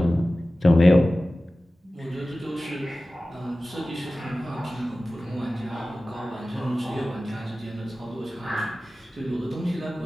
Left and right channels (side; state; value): both; normal; correlation 0.96